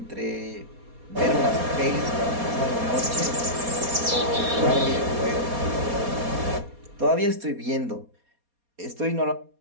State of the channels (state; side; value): late; left; 4.2 ms